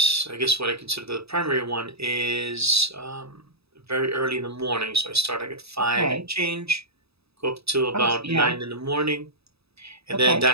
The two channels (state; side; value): late; left; 0.78 ms